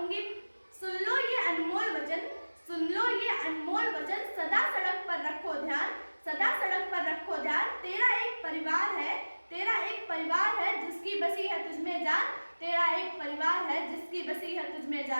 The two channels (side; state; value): both; inverted; correlation -1.00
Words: सुन लो ये अनमोल वचन, सुन लो ये अनमोल वचन, सदा सड़क पर रखो ध्यान, सदा सड़क पर रखो ध्यान। तेरा एक परिवार है जिसकी बसी है तुझमें जान, तेरा एक परिवार है जिसकी बसी है तुझमें